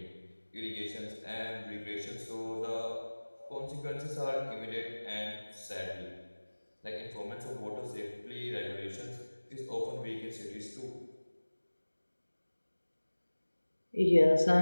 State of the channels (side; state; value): both; inverted; correlation -1.00